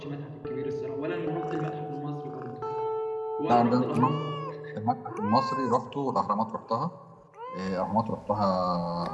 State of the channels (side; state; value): both; identical; correlation 1.00